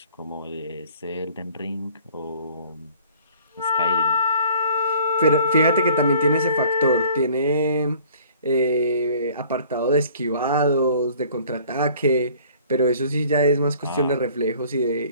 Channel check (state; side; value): inverted; both; correlation -0.53